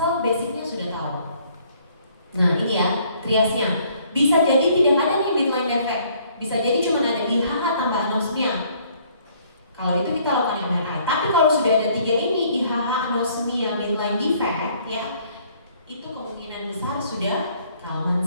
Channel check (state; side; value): inverted; both; correlation -0.62